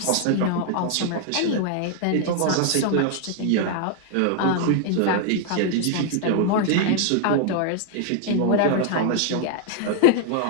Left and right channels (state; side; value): different; both; correlation 0.00